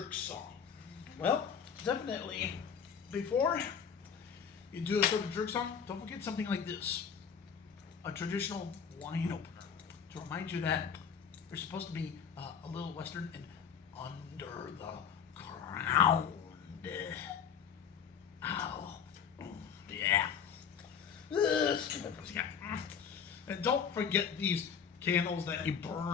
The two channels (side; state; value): right; quieter; 7.2 dB